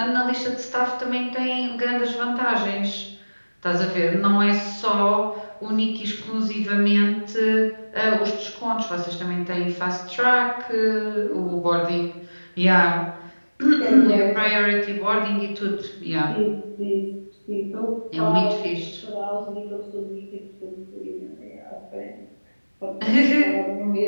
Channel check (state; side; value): inverted; both; correlation -1.00